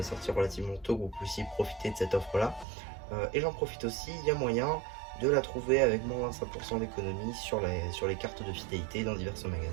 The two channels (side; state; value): left; drops out; at 2.7 s